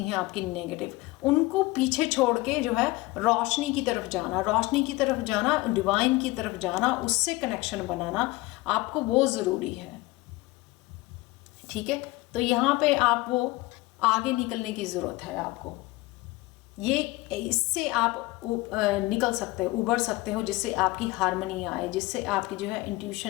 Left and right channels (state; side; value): quieter; right; 20.7 dB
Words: हैं आपकी नेगेटिव, उनको पीछे छोड़ के जो है रोशनी की तरफ जाना, रोशनी की तरफ जाना, डिवाइन की तरफ जाना, उससे कनेक्शन बनाना, आपको वो ज़रूरी है। ठीक है, तो यहाँ पे आप वो आगे निकलने की ज़रूरत है आपको। ये इससे आप निकल सकते हो, उबर सकते हो, जिससे आपकी हार्मनी आए, जिससे आपकी जो है